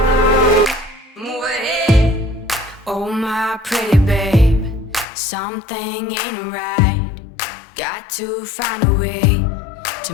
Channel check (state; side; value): drops out; right; at 5.1 s